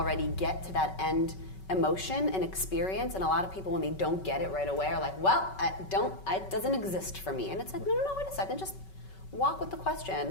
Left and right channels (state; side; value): late; right; 5.3 ms